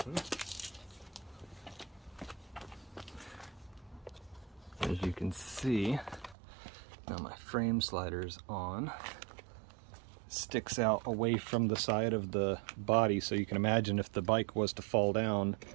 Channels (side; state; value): left; drops out; at 6.4 s